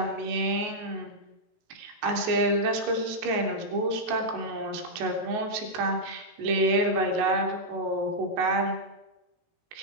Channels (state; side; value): late; left; 19 ms